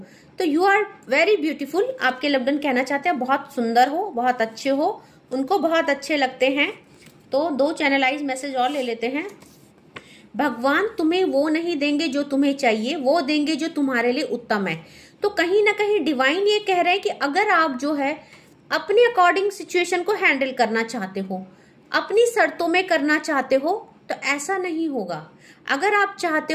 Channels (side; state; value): both; identical; correlation 1.00